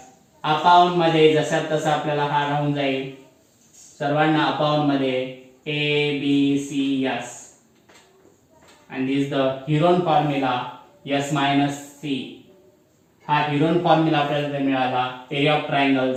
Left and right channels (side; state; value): both; identical; correlation 1.00